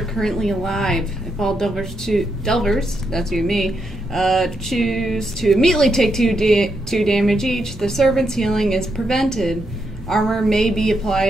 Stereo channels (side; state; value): both; normal; correlation 0.81